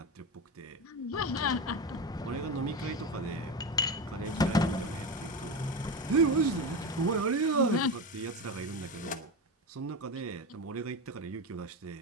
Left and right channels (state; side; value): normal; both; correlation 0.20